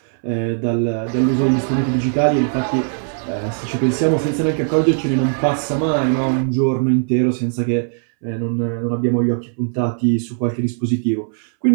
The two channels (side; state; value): left; silent; 66 dB below the other